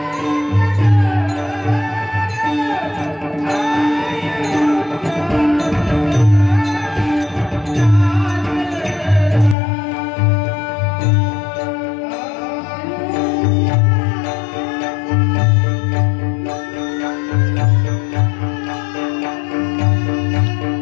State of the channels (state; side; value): drops out; right; at 9.6 s